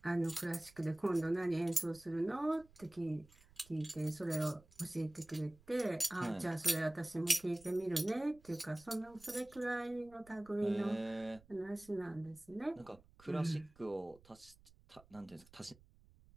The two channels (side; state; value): right; noise; rumble, 26 dB below the sound